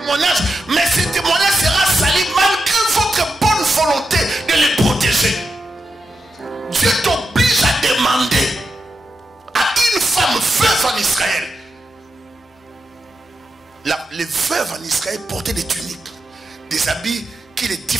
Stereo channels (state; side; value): normal; both; correlation 0.87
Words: mais ce témoignage sera sali malgré votre bonne volonté de le protéger. Dieu t'oblige à demander à une femme veuve en Israël. Les veuves en Israël portaient des tuniques, des habits qui les